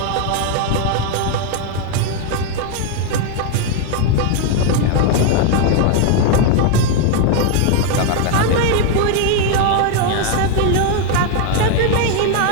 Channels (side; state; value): both; different; correlation 0.00